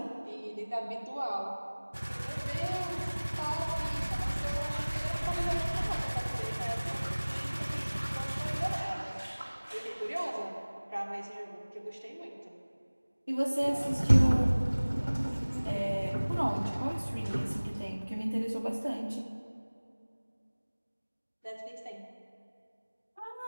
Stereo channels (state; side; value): inverted; both; correlation -1.00